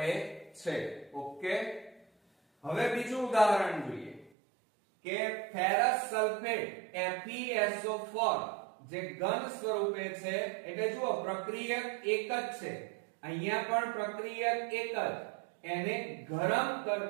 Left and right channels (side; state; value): left; drops out; at 4.3 s